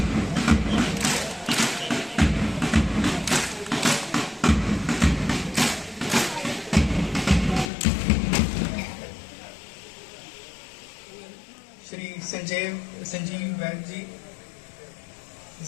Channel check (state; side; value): drops out; right; at 7.7 s